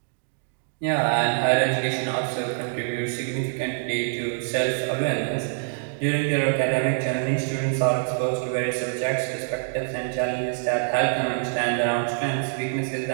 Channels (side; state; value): left; silent; digital silence